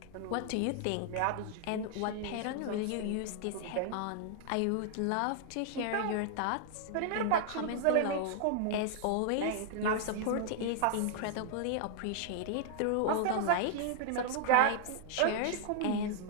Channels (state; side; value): different; both; correlation -0.01